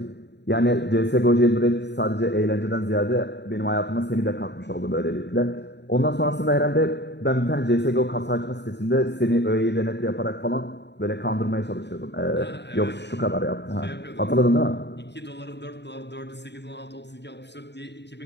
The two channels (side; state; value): right; late; 0.50 ms